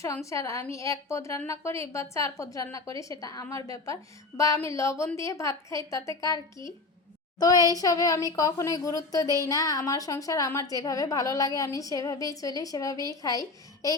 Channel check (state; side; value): quieter; right; 3.6 dB